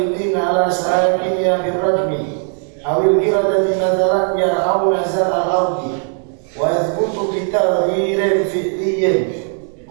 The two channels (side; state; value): left; silent; 55 dB below the other